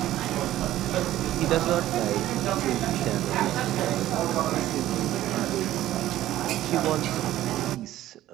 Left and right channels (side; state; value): left; quieter; 14.0 dB